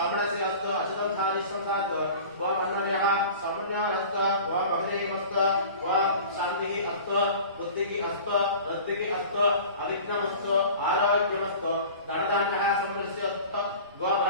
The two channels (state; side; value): inverted; both; correlation -0.40